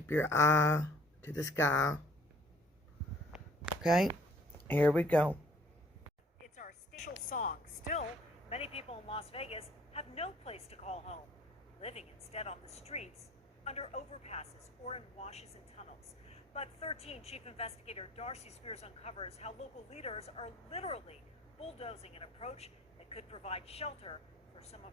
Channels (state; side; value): normal; both; correlation 0.56